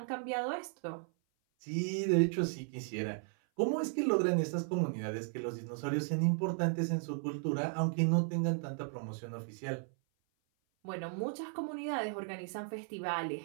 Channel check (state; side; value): silent; left; 54 dB below the other